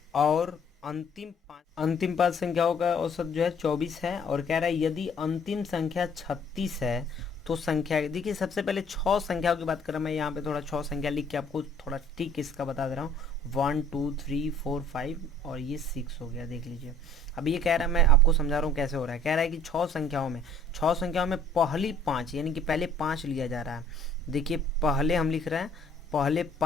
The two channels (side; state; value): both; normal; correlation 0.55